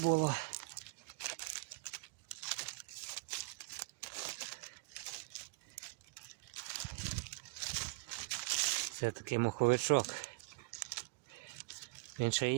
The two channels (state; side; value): quieter; left; 27.3 dB